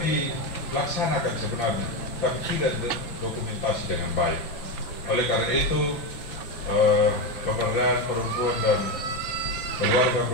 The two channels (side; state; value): right; late; 6.0 ms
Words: dilaksanakan sebenarnya, tapi tidak dokumentasi dengan baik. Oleh karena itu, pemberdayaan perempuan dan keluarga